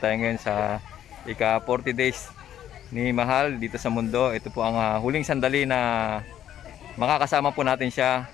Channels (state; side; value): quieter; right; 11.1 dB